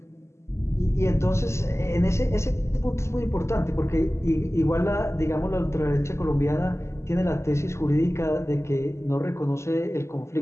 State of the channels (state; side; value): late; right; 0.13 ms